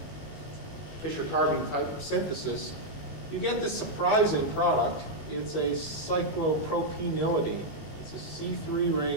Fischer-Carbon type of synthesis. You get this surprising product. It's a cyclopropenylidene. It's a C3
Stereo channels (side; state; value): right; late; 19 ms